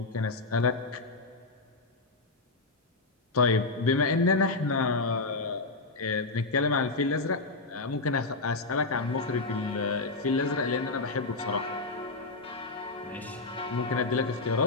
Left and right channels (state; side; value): quieter; right; 3.5 dB